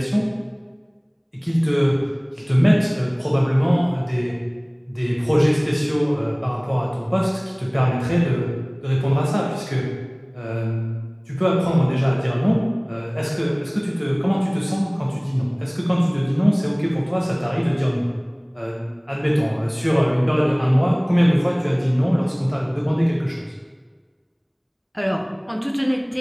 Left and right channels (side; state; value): both; identical; correlation 1.00